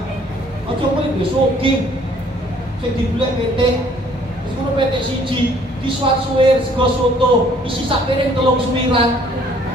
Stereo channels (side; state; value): both; normal; correlation 0.59